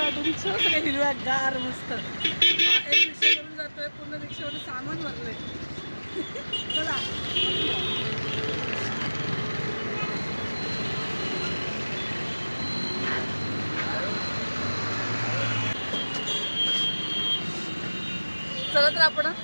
रिक्षा सगळे हिरव्या गार मस्त. एक रिक्षा करून जातोय, पूर्ण रिक्षामध्ये सामान भरलंय. चला चला तर आपण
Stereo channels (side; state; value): both; inverted; correlation -1.00